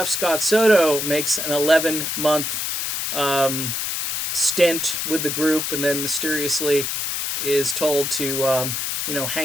Scott Soto makes an 11-month stint with the group and then mysteriously is told to,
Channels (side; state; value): left; noise; hiss, 2 dB below the sound